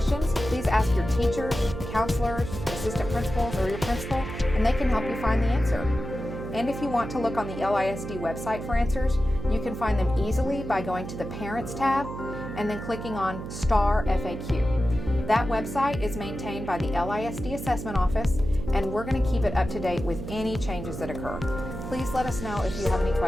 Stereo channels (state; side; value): noise; right; hum, 8 dB below the sound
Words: please ask your teachers, counselors, assistant principals, or your principal, and they can help you find the answer. And if you want to look on the LISD website for answers, you can find them easily by going to the Parents tab and then clicking on Star FAQ. That website is maintained by the LISD Assessment Office, and we're going to keep it up to date with any changes that occur. Please let us know if you have any